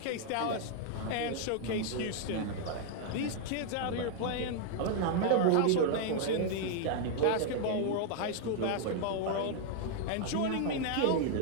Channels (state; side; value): different; both; correlation 0.00